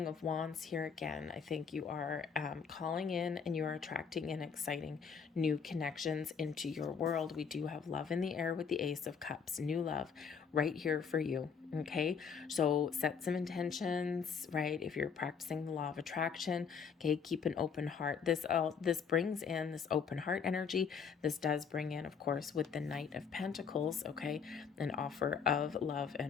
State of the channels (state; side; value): quieter; right; 6.4 dB